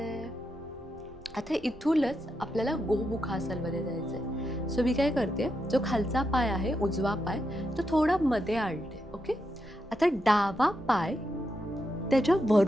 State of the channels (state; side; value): noise; right; rumble, 22 dB below the sound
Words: आता इथूनच आपल्याला गोमुखासनमध्ये जायचंय. सो मी काय करते, जो खालचा पाय आहे उजवा पाय तो थोडा मध्ये आणते. ओके, आता डावा पाय त्याच्या